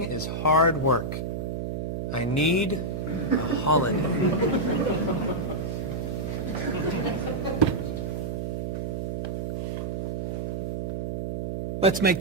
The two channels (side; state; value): right; noise; hum, 2 dB below the sound